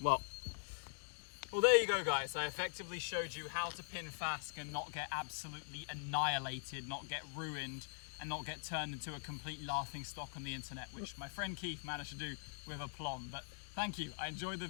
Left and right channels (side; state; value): right; silent; digital silence